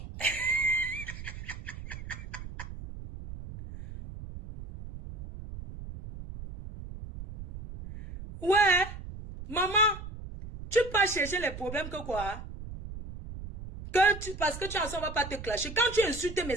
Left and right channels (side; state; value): right; noise; rumble, 11 dB below the sound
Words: Ouais, maman, tu peux chercher les problèmes que quoi? Parce que tu en sens, on va pas te clasher. Quand tu insultes mes